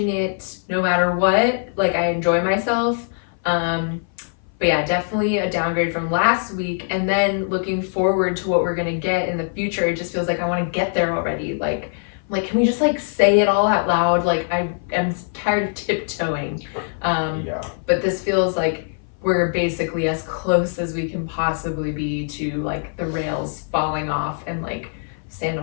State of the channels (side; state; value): right; silent; 57 dB below the other